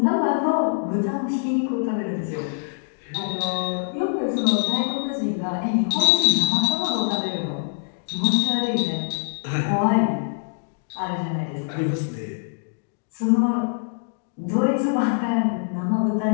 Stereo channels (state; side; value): silent; right; digital silence